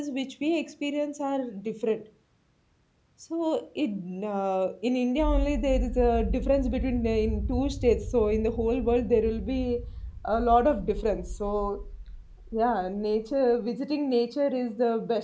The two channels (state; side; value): identical; both; correlation 1.00